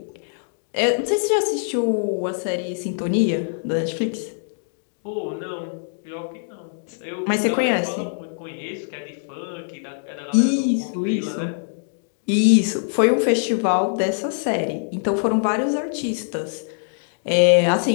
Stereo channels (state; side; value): silent; right; digital silence